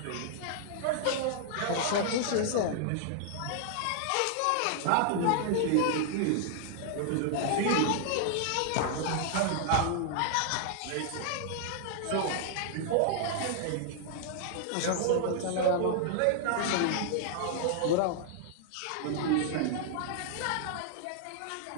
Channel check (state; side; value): different; both; correlation -0.01